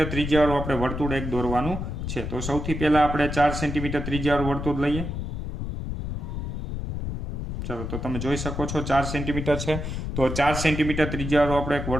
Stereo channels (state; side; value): noise; left; rumble, 4 dB below the sound